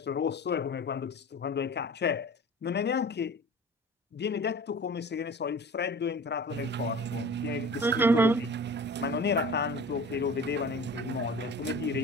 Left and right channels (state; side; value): normal; both; correlation 0.39